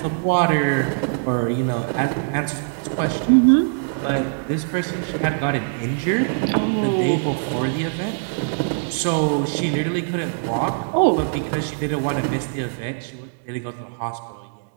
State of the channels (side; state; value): left; silent; digital silence